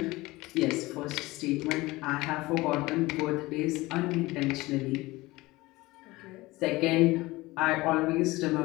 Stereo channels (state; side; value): quieter; right; 20.3 dB